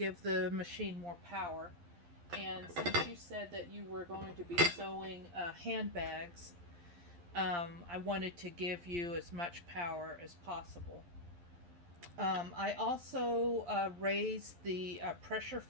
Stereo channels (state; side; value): late; left; 11 ms